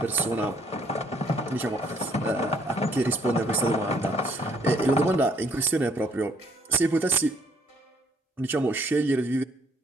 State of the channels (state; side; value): normal; both; correlation 0.65